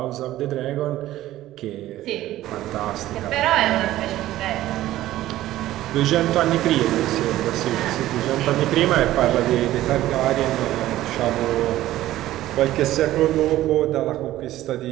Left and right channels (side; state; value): left; quieter; 14.7 dB